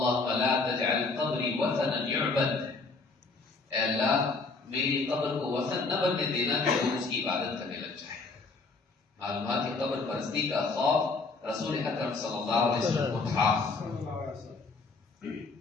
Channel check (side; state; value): right; quieter; 3.9 dB